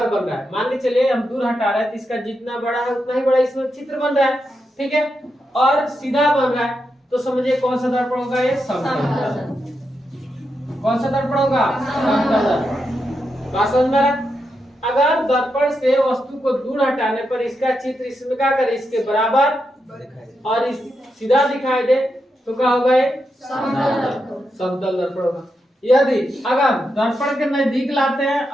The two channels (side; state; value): both; normal; correlation 0.85